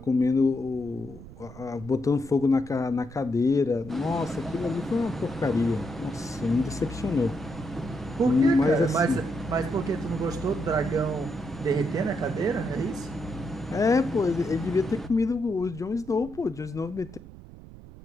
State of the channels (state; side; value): noise; right; rumble, 17 dB below the sound